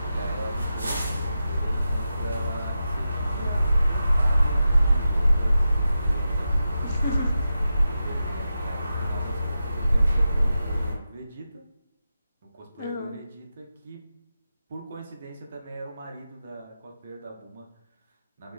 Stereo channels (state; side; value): inverted; both; correlation -0.90